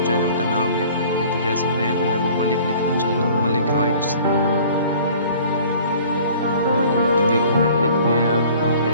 चैनल का नाम लिख लेंगे। तो जैसे मैं जो है वो मलिक लिखना चाहता हूँ, मलिक राइट्स। देखिए मैंने लिख दिया है। आप यहाँ पे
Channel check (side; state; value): both; inverted; correlation -0.50